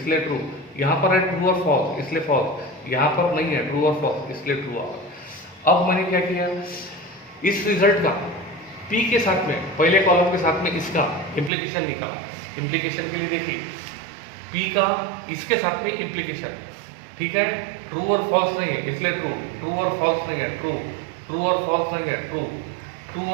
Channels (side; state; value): left; drops out; at 11.5 s